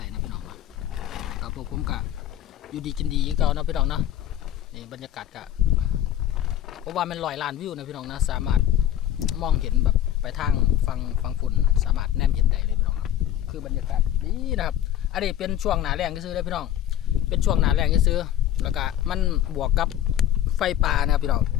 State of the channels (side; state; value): right; quieter; 11.5 dB